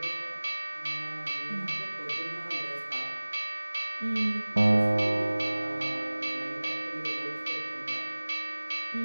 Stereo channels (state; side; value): inverted; both; correlation -1.00